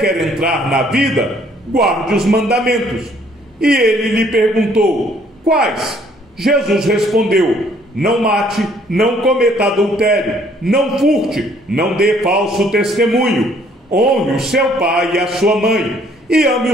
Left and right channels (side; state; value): both; normal; correlation 0.62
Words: entrar na vida, guarde os mandamentos. E ele lhe perguntou: quais? Jesus respondeu: não mate, não cometa adultério, não furte, não dê falso testemunho, honre o seu pai e a sua mãe, e ame